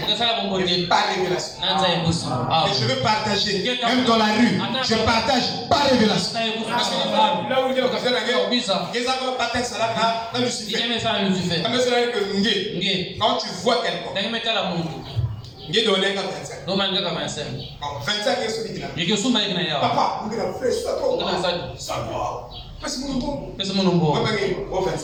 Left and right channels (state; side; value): identical; both; correlation 1.00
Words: Et par révélation. Et je veux partager. Même dans la rue, je partage par révélation. Parce que là où il y a quand tu vois quelqu'un, il est donné 25. 25 est celui qui l'a. Papa, vous avez fait ça. Parce que mon